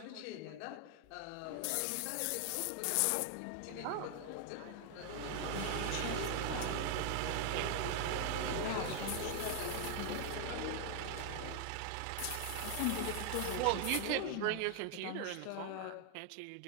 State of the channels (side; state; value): both; different; correlation 0.00